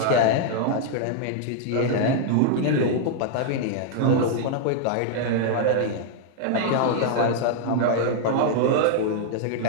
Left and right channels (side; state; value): both; different; correlation -0.01